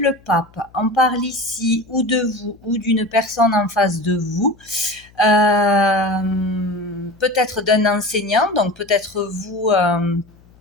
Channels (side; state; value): left; noise; hum, 28 dB below the sound